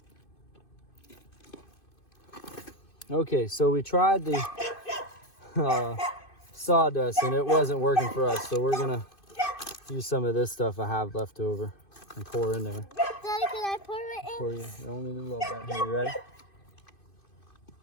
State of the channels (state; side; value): late; right; 2.5 ms